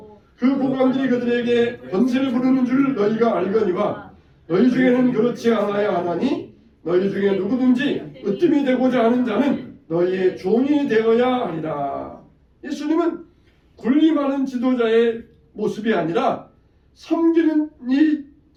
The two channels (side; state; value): both; identical; correlation 1.00